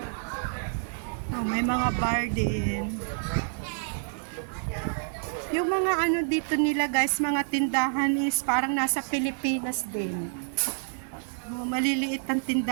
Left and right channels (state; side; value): silent; left; digital silence